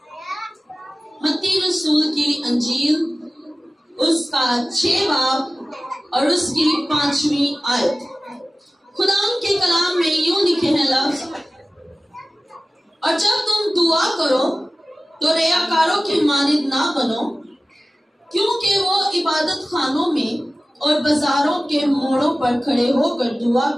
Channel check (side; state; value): both; normal; correlation 0.96